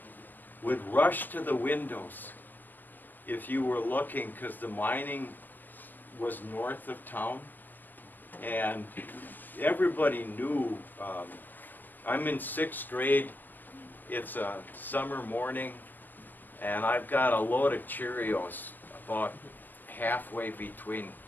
would rush to the windows if you were looking, because the mining was north of town, and everybody knew. I'm in 6th grade. It's a summer morning, and I've got a load of Cheerios about halfway between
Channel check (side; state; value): right; late; 0.088 ms